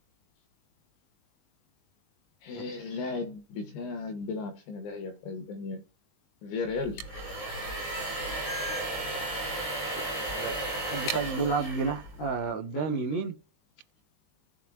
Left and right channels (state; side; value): late; right; 19 ms